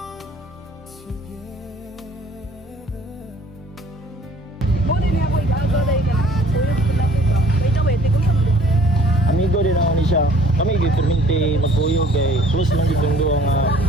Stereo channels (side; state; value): both; normal; correlation 0.54